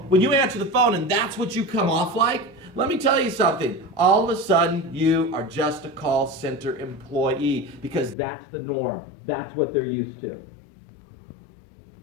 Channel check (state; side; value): drops out; right; at 8.2 s